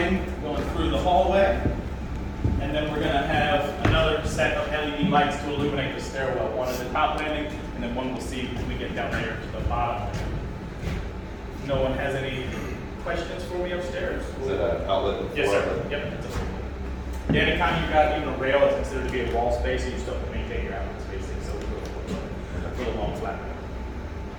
going through the hallway. And then we're going to have another set of LED lights to illuminate the stairwell. One at the top landing, and then one we'll see when we get down there to the bottom. No one has any questions for me upstairs? Is it an outlet? Yes, sir. Yep. Yeah, anytime you've got even a rail, it's considered to be a wall space, and you still have to maintain your outlet spacing, so we'll go for the long flat.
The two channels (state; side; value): identical; both; correlation 1.00